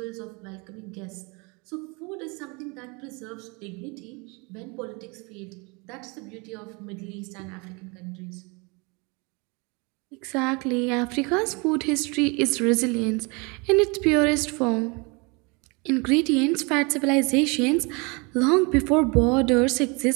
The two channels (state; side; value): quieter; left; 29.4 dB